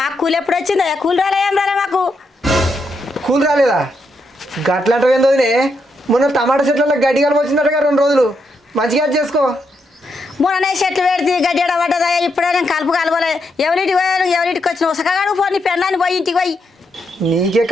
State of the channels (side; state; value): both; normal; correlation 0.80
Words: కూలి ఎప్పుడు వచ్చిందా? కూలి రాలే, ఏం రాలే మాకు. కూలి రాలేదా? గట్లంటే వదినే, మొన్న టమాటా చెట్లలో గడ్డి కలుపు వచ్చిందటగా 2 రోజులు. మంచిగా చేసుకో. మొన్ననే చెట్లు పెడితే గడ్డి పడ్డదా? ఇప్పుడే నేను కలుపు కలవలే. ఎవరింటికి పోయాను, ఎవరింటికి వచ్చిన సకాడు పో. నీ పెళ్ళాన్ని పోయి ఇంటికి పోయి. నీకే